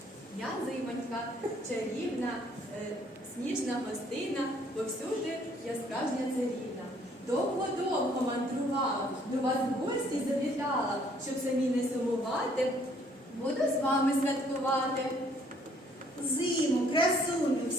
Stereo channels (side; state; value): both; normal; correlation 0.63